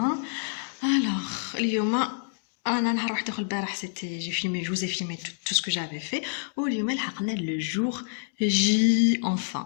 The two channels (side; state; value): right; silent; digital silence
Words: Alors, اليوم انا نهار واحد اخر البارح سيتي j'ai filmé, je vous ai filmé tout ce que j'avais fait. واليوم لحقنا le jour J